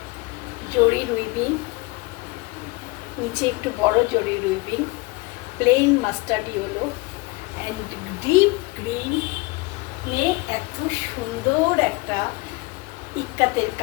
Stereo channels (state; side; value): quieter; right; 24.7 dB